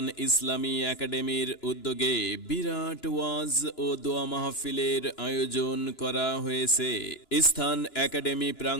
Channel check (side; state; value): right; late; 2.9 ms